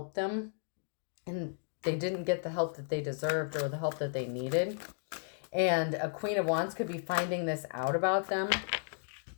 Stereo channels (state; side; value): silent; right; digital silence